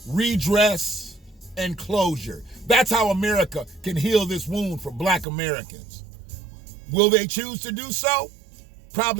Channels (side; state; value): left; drops out; at 5.2 s